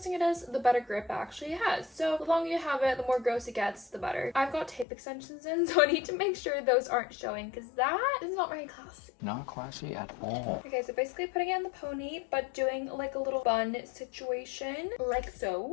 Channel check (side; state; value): right; drops out; at 4.9 s